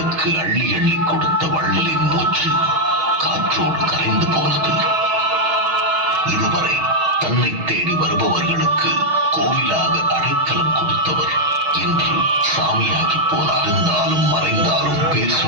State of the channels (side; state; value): left; late; 6.3 ms